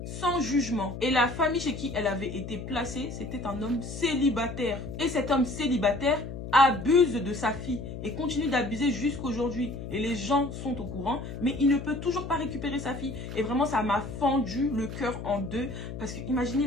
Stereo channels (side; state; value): left; noise; hum, 8 dB below the sound